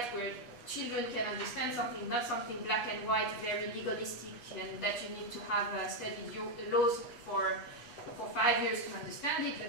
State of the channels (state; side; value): late; right; 8.3 ms